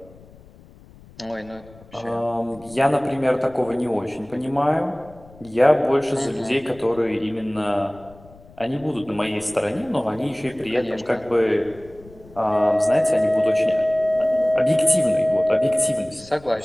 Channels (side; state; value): left; noise; rumble, 23 dB below the sound